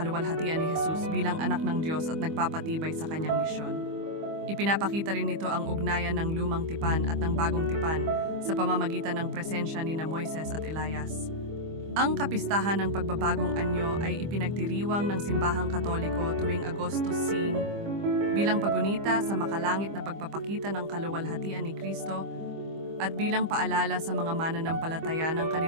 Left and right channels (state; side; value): late; left; 25 ms